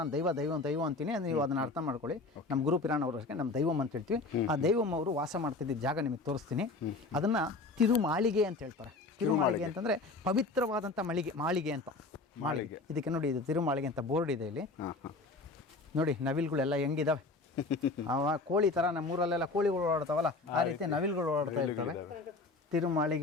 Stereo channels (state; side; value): quieter; right; 3.5 dB